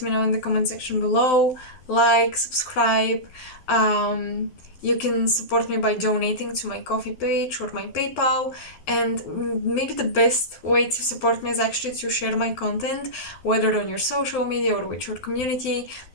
me know in the comment section below. Like, subscribe. Um, you can support me by donating to my coffee page or my PayPal. And maybe the best way to support me is actually to share my content, whether on your social media or with your community.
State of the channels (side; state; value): right; late; 12 ms